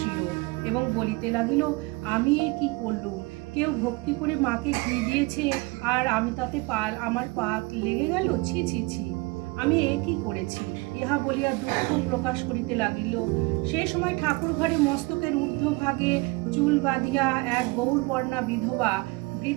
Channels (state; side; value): quieter; left; 24.9 dB